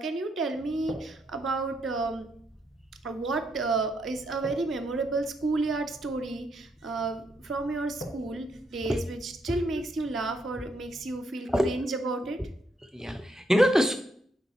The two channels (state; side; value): normal; both; correlation 0.76